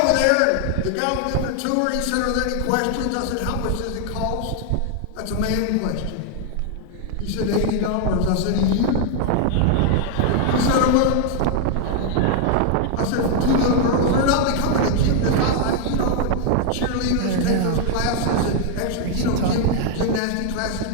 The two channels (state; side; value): different; both; correlation 0.00